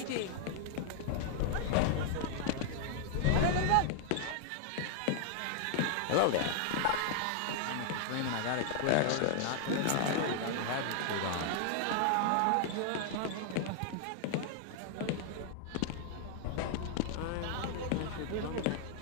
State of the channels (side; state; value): both; different; correlation -0.01